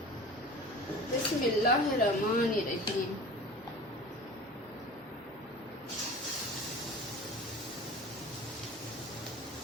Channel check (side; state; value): both; normal; correlation 0.38